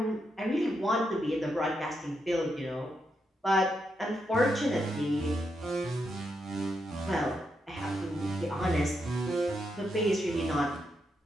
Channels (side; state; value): both; normal; correlation 0.82